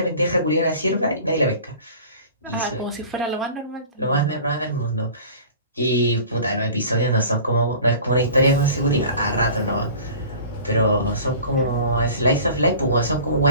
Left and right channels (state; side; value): inverted; both; correlation -0.42